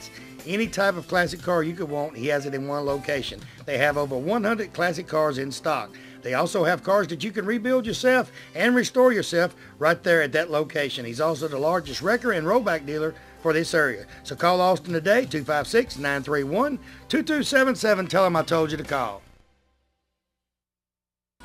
Any type of classic car you could want, he has it in one location. They have over 100 classic cars in stock. They also have cars that you can rebuild yourself and restore yourself right there at that location. He's also the largest wrecker and rollback dealer for this area. So call Austin today, 256-931-2277. Tell him I told you to call.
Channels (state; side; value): identical; both; correlation 1.00